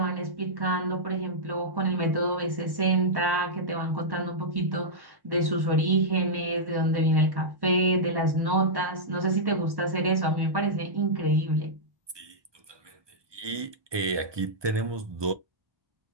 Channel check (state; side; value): late; left; 1.1 ms